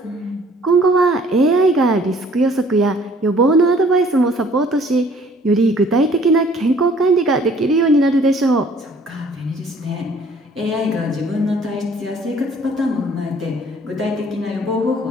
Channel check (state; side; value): normal; both; correlation 0.57